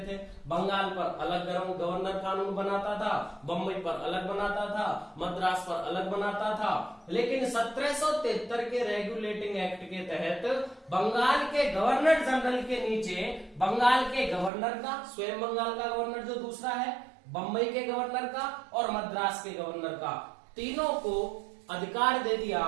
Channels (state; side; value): drops out; left; at 14.5 s